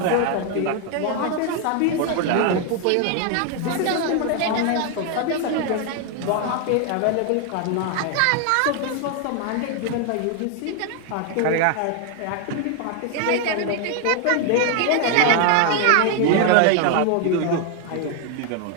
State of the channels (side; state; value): both; different; correlation 0.00